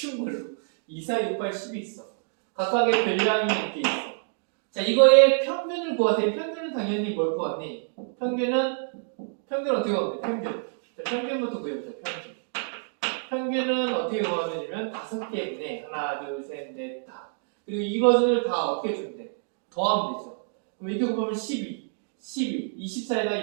걸로 2, 4, 6, 8, 10이 있어. 각각의 별량이 이렇게 있어. 자, 이거의 평균을 구하세요. 평균은 당연히 뭘 구하니? 평균은 어떻게 구하면 돼? 평균. 자, 평균부터 구해보자. 평균은 어떻게 구하면 되냐면 5개분의 하나, 둘, 셋, 넷, 다. 그리고 이것을 다 어떻게 주면 돼? 더하면 되죠. 그럼 이렇게 곱하면 12,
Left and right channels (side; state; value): left; silent; digital silence